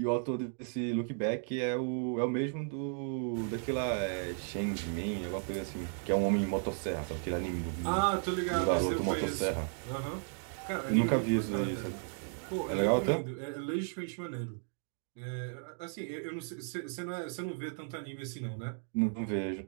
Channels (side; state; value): left; silent; 55 dB below the other